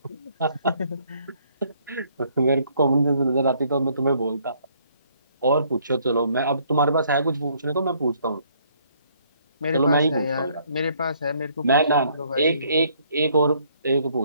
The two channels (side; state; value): both; inverted; correlation -0.65